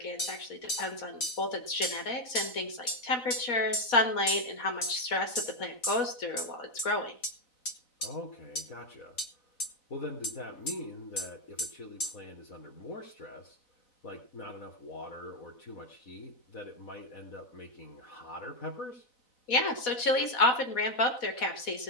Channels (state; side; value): late; right; 4.0 ms